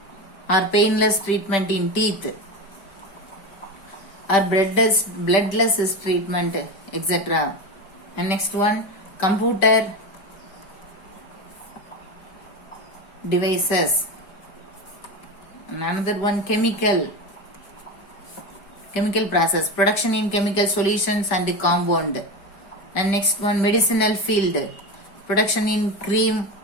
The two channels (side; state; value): right; late; 5.1 ms